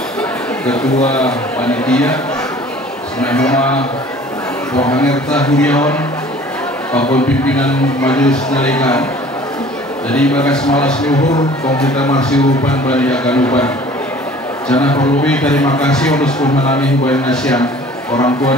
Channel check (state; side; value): normal; both; correlation 0.49